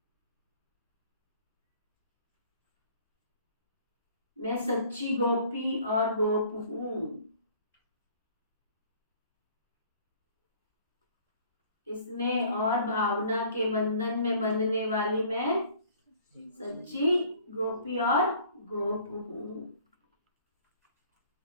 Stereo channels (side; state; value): both; inverted; correlation -0.53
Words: मैं सच्ची गोपी और गोप हूं। स्नेह और भावना के बंधन में बंधने वाली मैं सच्ची गोपी और गोप हूं।